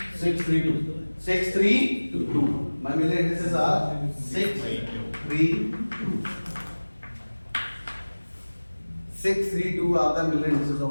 6, 3, 2. 6, 3, 2. My million indices are 6, 3, 2. 6, 3, 2 are the million indices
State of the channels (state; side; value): inverted; both; correlation -1.00